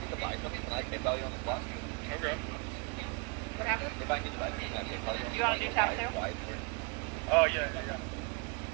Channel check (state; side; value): quieter; left; 31.9 dB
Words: to buy something, can I PayPal you on the spot? Okay. What happened? If I need to buy something, can I PayPal you on the spot? You wanna do tap too? Oh, yeah, yeah.